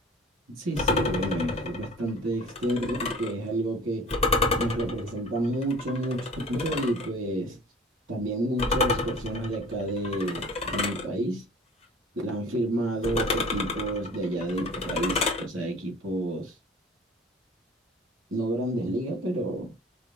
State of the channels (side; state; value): both; normal; correlation 0.44